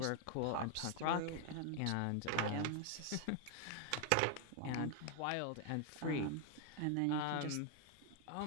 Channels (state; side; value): different; both; correlation 0.00